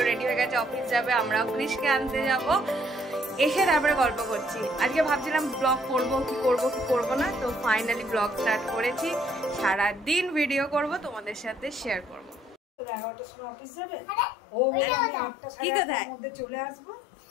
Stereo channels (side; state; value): right; drops out; at 12.6 s